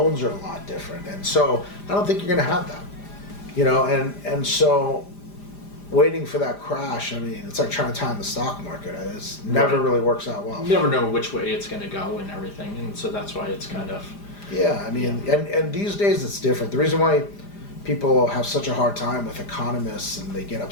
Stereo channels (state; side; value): late; right; 5.0 ms